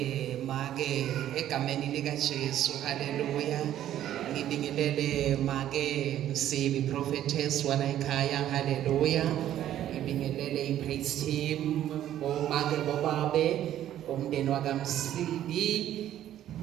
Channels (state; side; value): quieter; left; 11.9 dB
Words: make egameni lika Jesu haleluya ngibingelele make Msibi prophetess wala ekhaya haleluya ngibingelele ipraise team omake bobabe umndeni wakamsibi